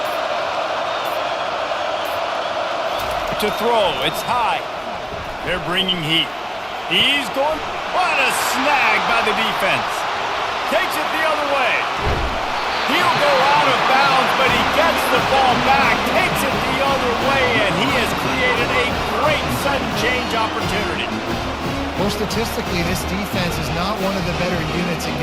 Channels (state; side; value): identical; both; correlation 1.00